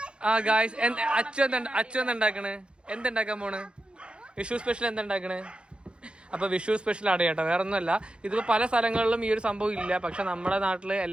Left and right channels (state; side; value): late; left; 0.055 ms